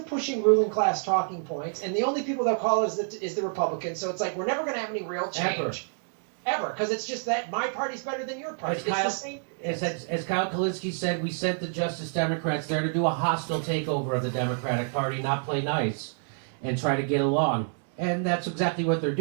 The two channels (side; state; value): left; silent; 59 dB below the other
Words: pushing ruling class talking points. And the only people they'll call is the Republicans. So it's like we're never going to have any real change. Ever, because it's just that my party's better than your party. As Kyle Kalinske said, we sent the Justice Democrats there to do a hostile takeover of the Democratic Party, not play nice, and try to get along. And that's exactly what they're